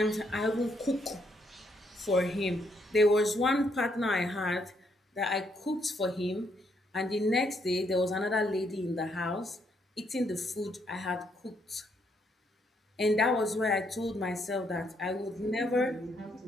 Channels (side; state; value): both; normal; correlation 0.73